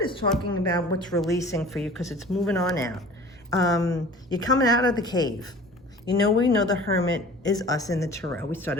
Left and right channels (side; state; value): both; normal; correlation 0.43